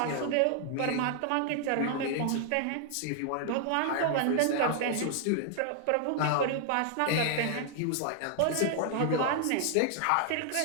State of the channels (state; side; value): different; both; correlation 0.00